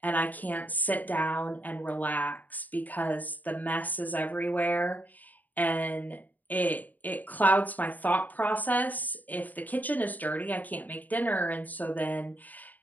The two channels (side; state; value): right; late; 0.082 ms